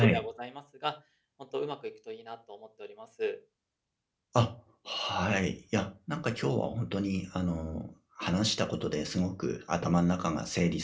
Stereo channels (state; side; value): identical; both; correlation 1.00